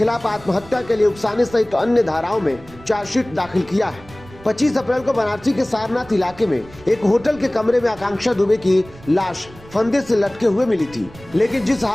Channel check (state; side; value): noise; right; rumble, 21 dB below the sound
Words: आत्महत्या के लिए उकसाने सहित अन्य धाराओं में चार्जशीट दाखिल किया है। 25 अप्रैल को बनारसी के सारनाथ इलाके में एक होटल के कमरे में आकांक्षा दुबे की लाश फंदे से लटके हुए मिली थी, लेकिन जिस